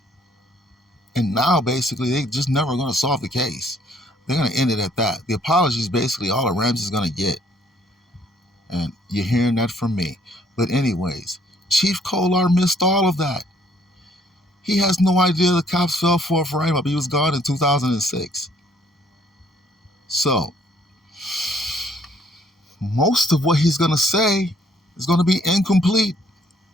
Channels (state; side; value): normal; both; correlation 0.64